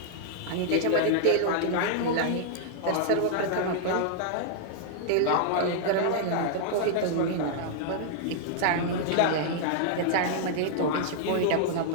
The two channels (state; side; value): different; both; correlation -0.01